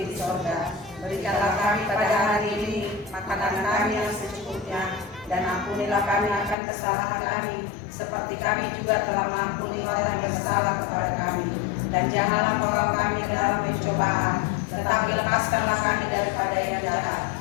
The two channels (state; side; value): drops out; right; at 6.6 s